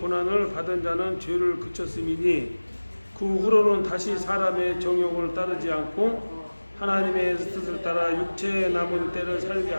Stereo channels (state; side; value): inverted; both; correlation -1.00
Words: 받은 자는 죄를 그쳤음이니 그 후로는 다시 사람의 정욕을 따르지 않고 하나님의 뜻을 따라 육체에 남은 때를 살게